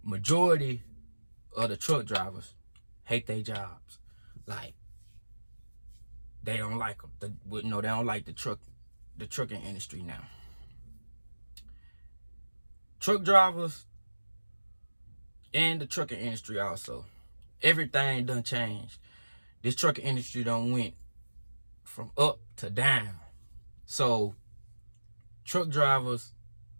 majority of the truck drivers hate their jobs. Like, they don't like them. They don't like the trucking industry now. Truck drivers and the trucking industry also. Everything done changed. This trucking industry done went from up to down. So truck drivers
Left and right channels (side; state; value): both; inverted; correlation -1.00